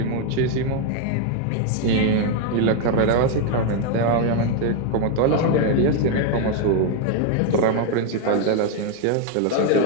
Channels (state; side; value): different; both; correlation 0.01